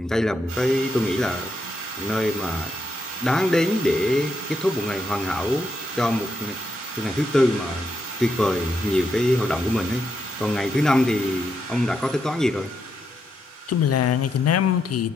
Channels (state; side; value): normal; both; correlation 0.81